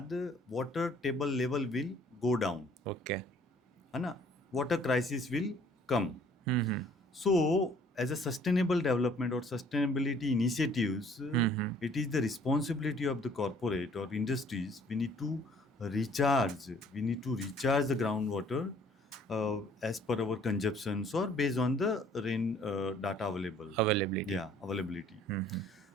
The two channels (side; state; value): both; normal; correlation 0.58